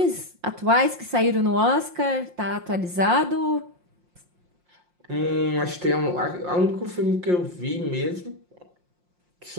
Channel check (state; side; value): late; left; 5.6 ms